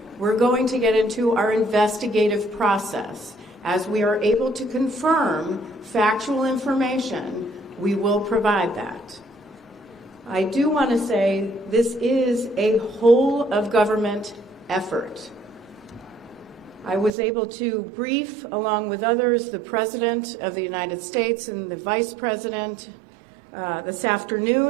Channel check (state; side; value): drops out; left; at 17.1 s